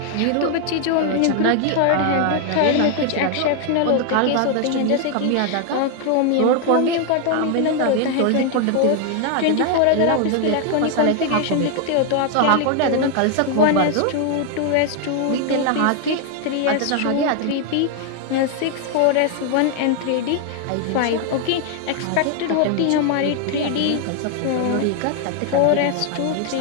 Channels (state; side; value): different; both; correlation 0.00